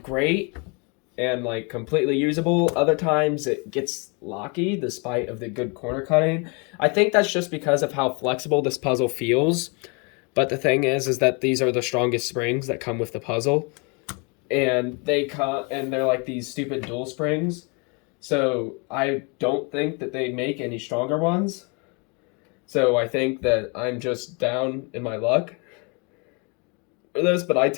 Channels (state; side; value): quieter; right; 32.5 dB